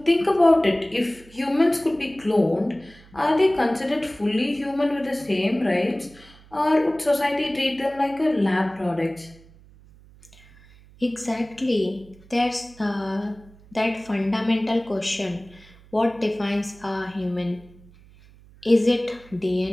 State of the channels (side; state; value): right; noise; hum, 25 dB below the sound